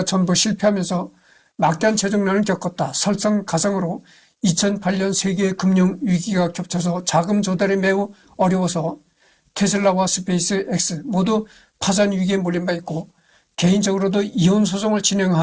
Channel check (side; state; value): both; identical; correlation 1.00